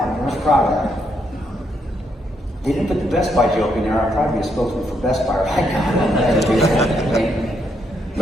I was proud of that. They didn't put the Best Buy joke in there. I'd probably be a spokesman for Best Buy right now.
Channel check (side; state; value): both; normal; correlation 0.76